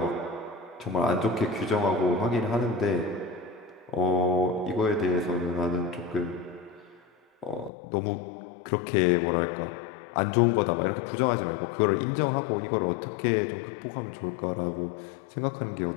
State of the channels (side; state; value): right; drops out; at 7.7 s